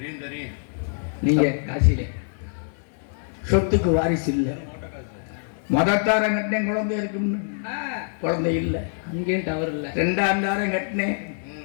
நீங்க. காசிலே சொத்துக்கு வாரிசு இல்லை. முதத்தாரம் கட்டினேன், குழந்தை இருக்குன்னு. குழந்தை இல்லை, அங்கேயும் டவர் இல்லை. 2ஆம் தாரம் கட்டினேன்,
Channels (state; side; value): silent; right; 59 dB below the other